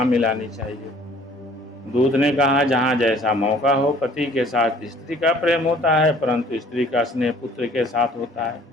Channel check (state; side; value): normal; both; correlation 0.54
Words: मिलानी चाहिए? दूत ने कहा, जहाँ जैसा मौका हो। पति के साथ स्त्री का प्रेम होता है, परंतु स्त्री का स्नेह पुत्र के साथ होता है।